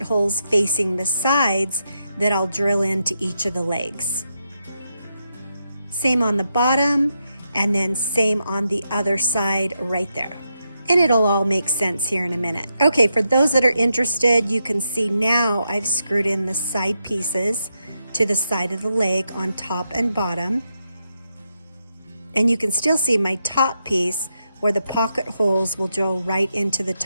holes facing the sides that I'll drill into each of the legs. Same on the bottom, and then same on the other side right there. And it'll all make sense here in a minute. Okay, for those that are interested, you can see now I've screwed in the side pieces to the side of the leg on top and bottom. And you can still see my top piece where the pocket holes will drill right into the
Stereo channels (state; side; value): inverted; both; correlation -0.84